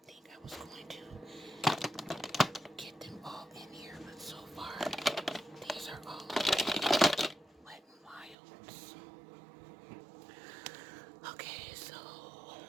think I was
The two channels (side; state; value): left; drops out; at 8.3 s